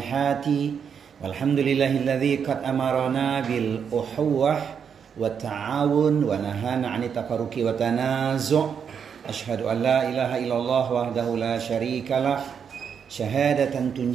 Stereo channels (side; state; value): left; quieter; 7.2 dB